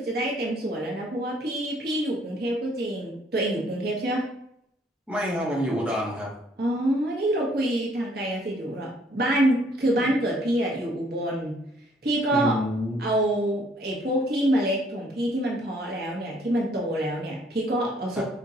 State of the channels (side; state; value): both; normal; correlation 0.64